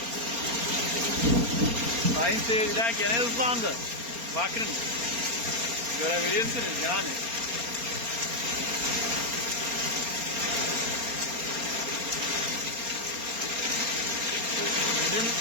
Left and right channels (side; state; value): left; late; 4.3 ms